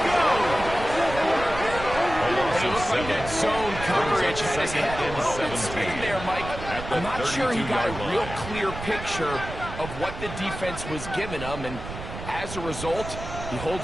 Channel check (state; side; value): noise; right; rumble, 10 dB below the sound